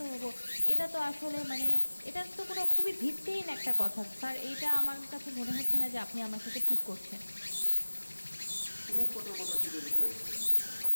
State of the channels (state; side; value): inverted; both; correlation -1.00